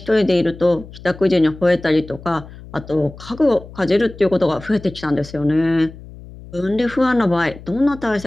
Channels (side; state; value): left; noise; hum, 17 dB below the sound